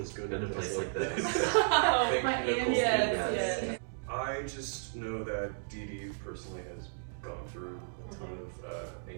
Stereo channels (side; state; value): left; silent; digital silence